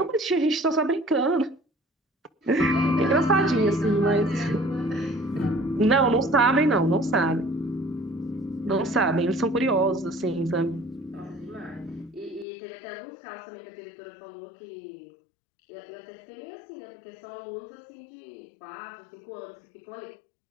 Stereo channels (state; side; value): drops out; right; at 12.5 s